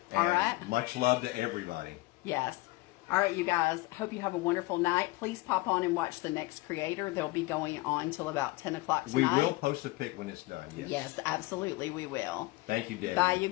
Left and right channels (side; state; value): right; quieter; 21.1 dB